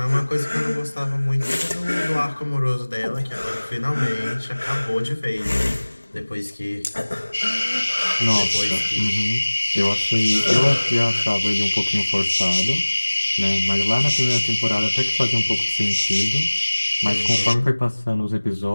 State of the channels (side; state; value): both; inverted; correlation -1.00